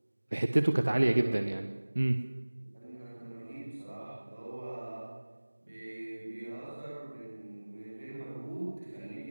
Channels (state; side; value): inverted; both; correlation -1.00